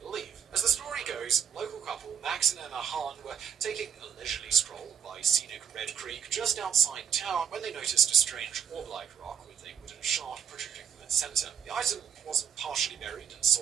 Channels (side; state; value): left; quieter; 8.1 dB